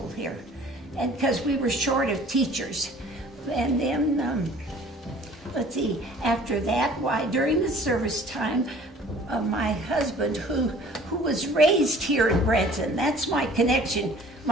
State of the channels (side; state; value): both; normal; correlation 0.51